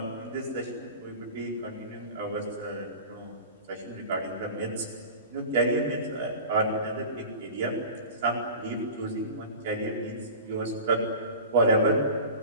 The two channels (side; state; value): both; inverted; correlation -0.36